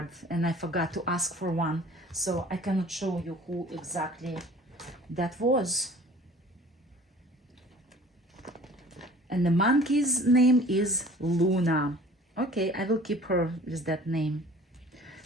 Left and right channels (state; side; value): normal; both; correlation 0.48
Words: and I forgot to ask for one. So I cannot show you who exactly that was. And the monkey's name is Luna. Okay, I will keep her with that name.